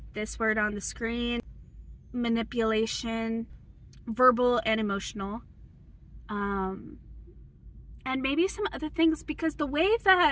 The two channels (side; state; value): both; identical; correlation 1.00